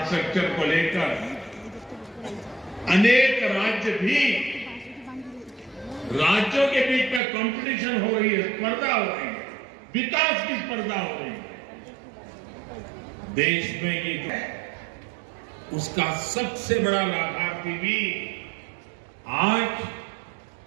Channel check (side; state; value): left; drops out; at 7.2 s